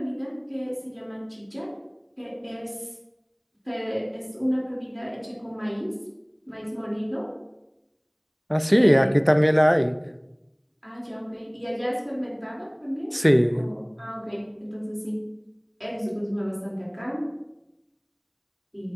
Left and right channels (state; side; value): identical; both; correlation 1.00